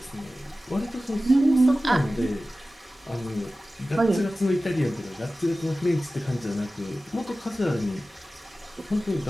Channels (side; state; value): both; normal; correlation 0.96